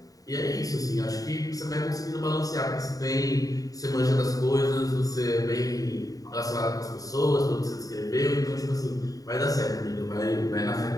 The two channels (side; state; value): right; late; 0.18 ms